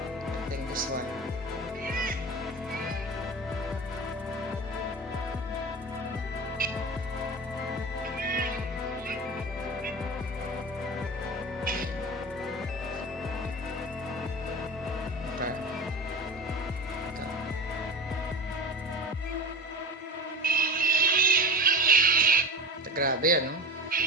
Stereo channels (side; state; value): both; normal; correlation 0.31